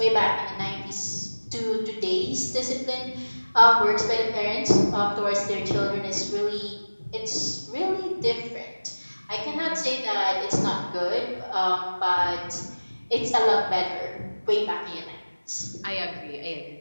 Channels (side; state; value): both; inverted; correlation -1.00